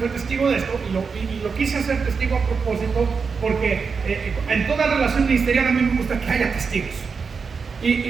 testigo de esto, y lo quise hacer testigo a propósito, porque en toda relación ministerial a mí me gusta que haya testigos.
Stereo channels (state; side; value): quieter; left; 5.3 dB